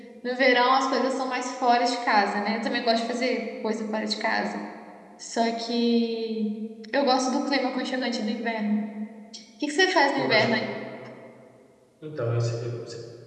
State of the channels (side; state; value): both; identical; correlation 1.00